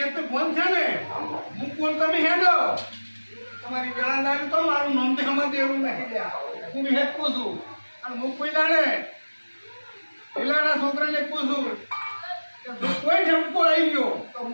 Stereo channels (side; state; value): both; inverted; correlation -1.00